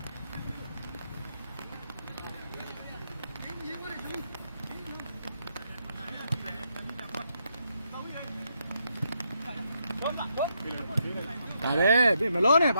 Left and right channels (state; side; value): inverted; both; correlation -0.79